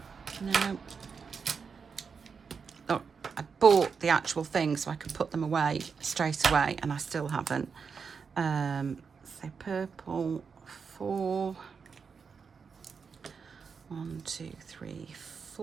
No. Oh, I bought the actual thing so I could put them away straight away, and I still haven't. So purple, 4. 1, 2, 3,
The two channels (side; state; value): left; quieter; 5.7 dB